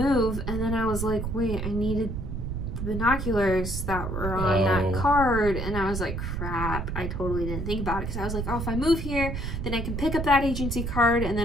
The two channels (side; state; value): right; noise; rumble, 4 dB below the sound